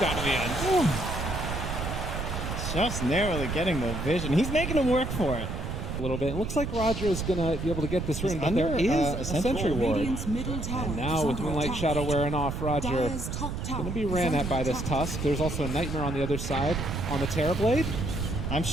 down in the end. Ooh. Just narrowly getting the vision. He's making him work for it. A little bit. It looks like Roger is going to be able to get this rune, but there is a Sentry Ward. And now with Moonlight Shadow wearing off, Roger going to be ran at by this Tusk. There's also a Nightmare on the other side on the Terrorblade. I'm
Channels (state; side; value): noise; right; rumble, 4 dB below the sound